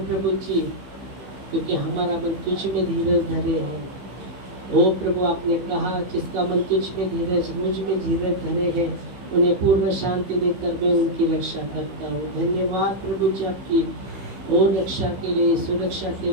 जी, क्योंकि हमारा मन तुझ में धीरज धरे है। ओ प्रभु, आपने कहा जिसका मन तुझ में धीरज, मुझ में धीरज धरे है, उन्हें पूर्ण शांति देकर मैं उनकी रक्षा करता हूँ। धन्यवाद प्रभु जी आपकी ओ रक्षा के लिए, सुरक्षा के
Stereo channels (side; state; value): left; late; 15 ms